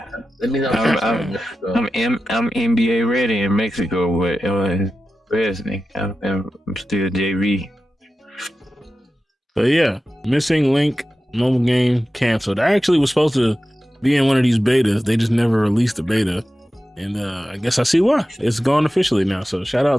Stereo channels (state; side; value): normal; both; correlation 0.93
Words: Let me know. I'm NBA ready in Mexico, but I'm still JV. But yeah, Missing Link mobile game canceled. I actually was supposed to be in one of these betas. They just never released the beta. And I guess I see why. It's gone officially now. So shout